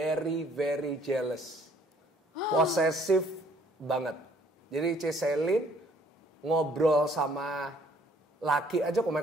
jealous. Posesif banget. Jadi Giselle ngobrol sama laki aja Ko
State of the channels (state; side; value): normal; both; correlation 0.61